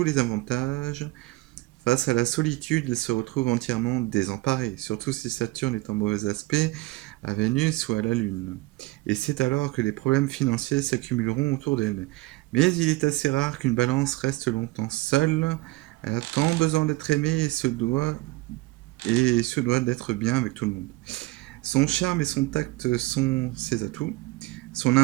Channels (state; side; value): quieter; left; 20.4 dB